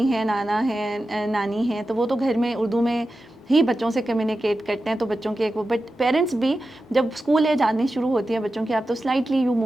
हैं, नाना हैं, नानी हैं, तो वो तो घर में उर्दू में ही बच्चों से कम्युनिकेट करते हैं, तो बच्चों के एक वो, बट पेरेंट्स भी जब स्कूल एज आनी शुरू होती है बच्चों की, आप तो slightly you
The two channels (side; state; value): both; normal; correlation 0.92